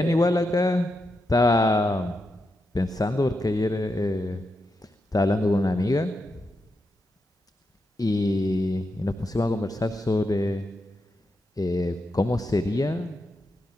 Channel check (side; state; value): both; normal; correlation 0.86